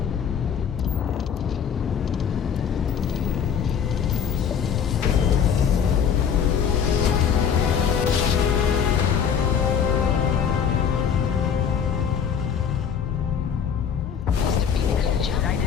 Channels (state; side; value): quieter; right; 7.5 dB